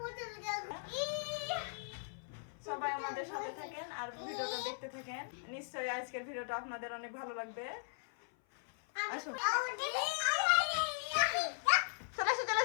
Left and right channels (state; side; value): silent; right; 52 dB below the other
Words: সবাই আমাদের সাথে থাকেন আর ভিডিওটা দেখতে থাকেন। নিশ্চয়ই আজকের ভিডিওটা আপনাদের অনেক ভালো লাগবে। আসুন, চলে আসো, চলে